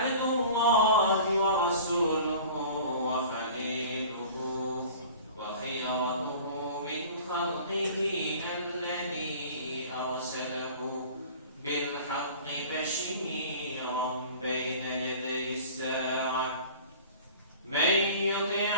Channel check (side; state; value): both; inverted; correlation -0.43